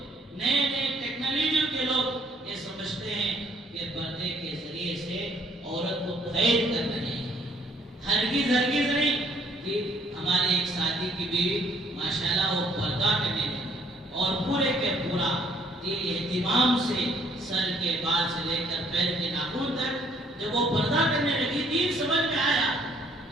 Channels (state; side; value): normal; both; correlation 0.63